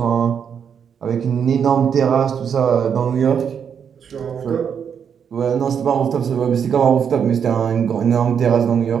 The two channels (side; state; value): left; quieter; 7.5 dB